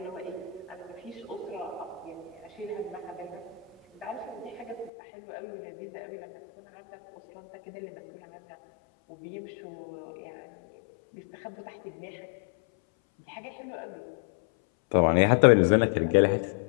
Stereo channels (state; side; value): drops out; right; at 4.9 s